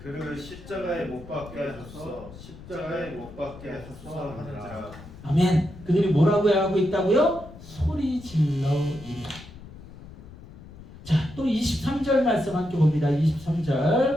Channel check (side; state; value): left; noise; rumble, 17 dB below the sound